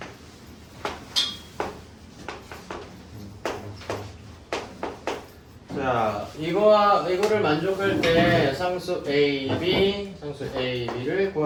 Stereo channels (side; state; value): both; identical; correlation 1.00